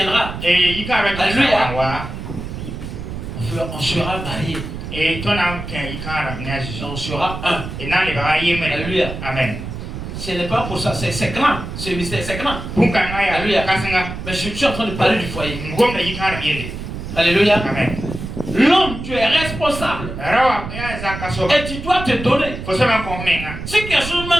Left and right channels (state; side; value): noise; right; rumble, 8 dB below the sound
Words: alléluia, on sera mariés. On sera un. Alléluia. Amen. Ce n'est pas pour ça, c'est grand. Ce mystère, c'est grand. Alléluia. Mais je suis en train de parler du foyer. Alléluia. Amen. L'homme, tu es responsable. Et tu dois te donner. Si quelque chose